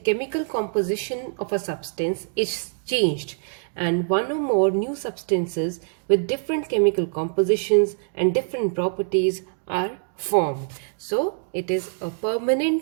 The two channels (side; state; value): left; silent; 59 dB below the other